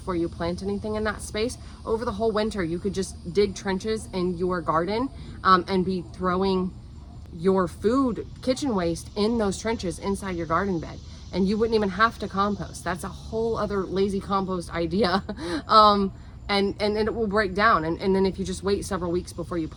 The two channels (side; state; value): both; identical; correlation 1.00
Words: you plant anything in that space. Over the whole winter, you could just dig trenches in your garden and be throwing your food, kitchen waste in those trenches inside your garden bed. And you wouldn't even have to compost. That's a whole other lazy compost idea. And it will break down. And then if you just wait several weeks before you